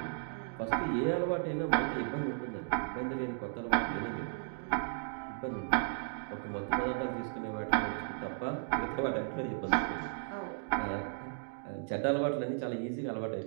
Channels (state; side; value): silent; left; digital silence